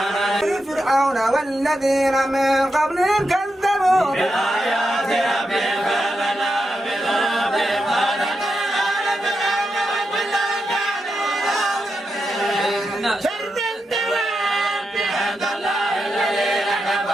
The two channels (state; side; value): normal; both; correlation 0.86